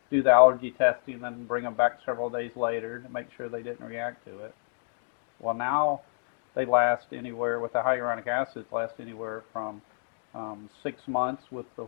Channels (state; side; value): silent; right; digital silence